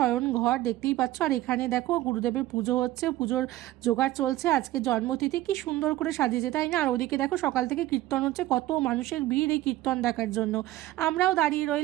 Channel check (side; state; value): left; quieter; 15.7 dB